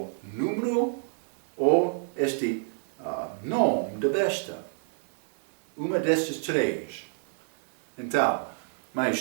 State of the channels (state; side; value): silent; left; 57 dB below the other